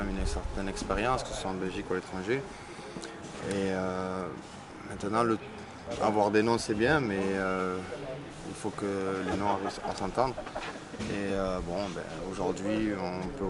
une certaine expérience, que ce soit en Belgique ou à l'étranger. Et maintenant, avoir des noms c'est bien, mais il faut que les noms arrivent à s'entendre. Et aujourd'hui, on peut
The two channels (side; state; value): both; identical; correlation 1.00